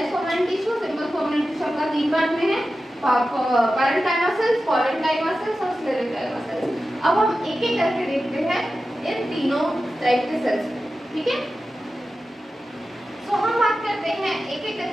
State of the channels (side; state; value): both; normal; correlation 0.93